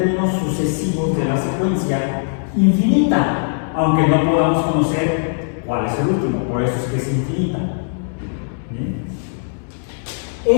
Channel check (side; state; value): right; silent; digital silence